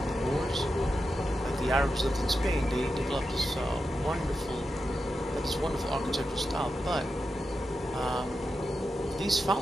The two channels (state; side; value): normal; both; correlation 0.89